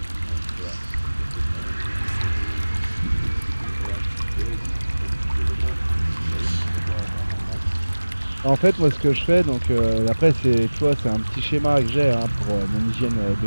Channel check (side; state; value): both; inverted; correlation -1.00